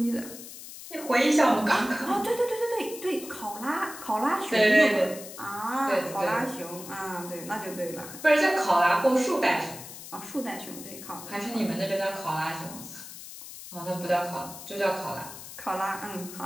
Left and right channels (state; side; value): noise; left; hiss, 13 dB below the sound